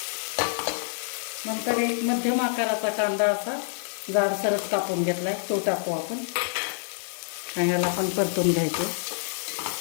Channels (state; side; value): silent; right; 60 dB below the other